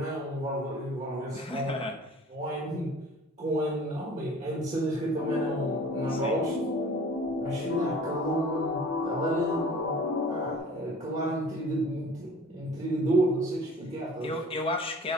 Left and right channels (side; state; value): both; normal; correlation 0.46